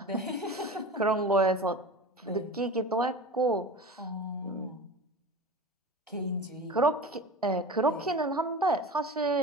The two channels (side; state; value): both; normal; correlation 0.33